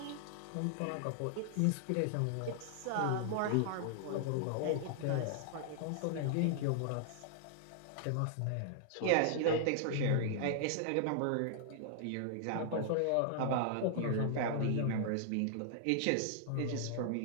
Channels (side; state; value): both; different; correlation -0.01